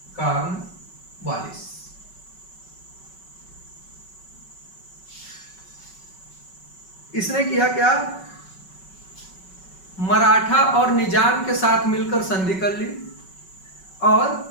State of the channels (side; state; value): right; late; 5.3 ms